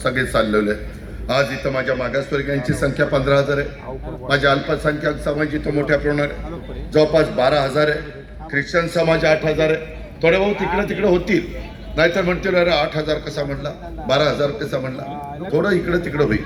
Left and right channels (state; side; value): identical; both; correlation 1.00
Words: चाललेलो आहे। आज इथं माझ्या मागासवर्गीयांची संख्या 15,000 आहे, माझ्या अल्पसंख्याक समाज इथं मोठ्या प्रमाणात जवळपास 12,000 आहे, ख्रिश्चन समाज 8,000 आहे। थोडे बहुत तिकडे होतील, नाहीतर म्हणतील अरे 8,000 कसा म्हणला, 12,000 कसा म्हणला, थोडं इकडे होईल।